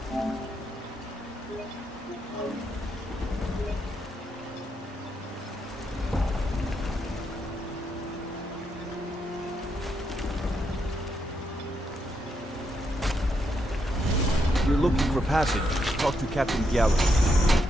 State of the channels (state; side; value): normal; both; correlation 0.79